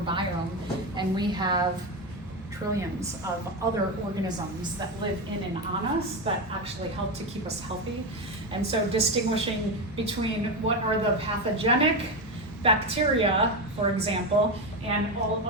and we have trillions of other organisms that live in and on us that actually help to keep us healthy. And so distinguishing between what are the pathogenic bacteria, for example, and all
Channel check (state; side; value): normal; both; correlation 0.14